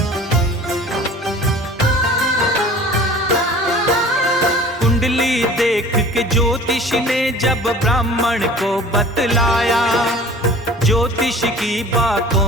कुंडली देख के ज्योतिष ने जब ब्राह्मण को बतलाया, ज्योतिष की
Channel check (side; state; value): both; normal; correlation 0.44